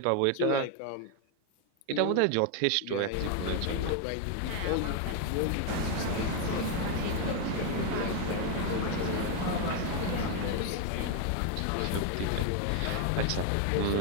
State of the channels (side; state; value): both; different; correlation 0.01